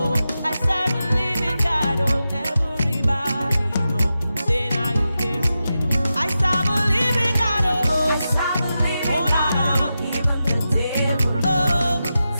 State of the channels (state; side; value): inverted; both; correlation -0.90